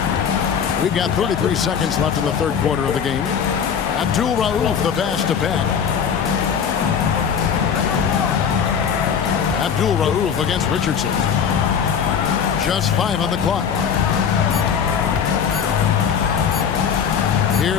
We've got 33 seconds left in the third quarter of the game. Abdul Rauf, the pass to Pat. Abdul Rauf against Richardson. Just 5 on the clock.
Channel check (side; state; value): right; quieter; 7.3 dB